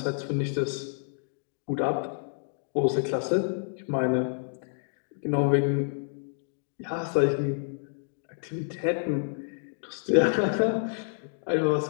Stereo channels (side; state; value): right; silent; digital silence